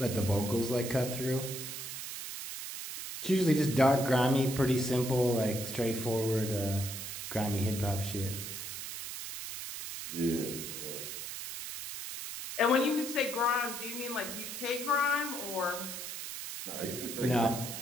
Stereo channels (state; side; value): noise; right; hiss, 7 dB below the sound